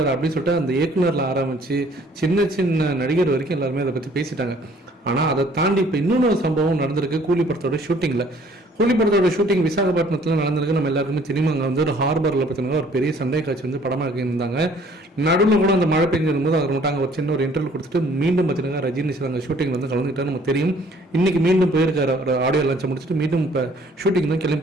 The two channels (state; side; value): normal; both; correlation 0.58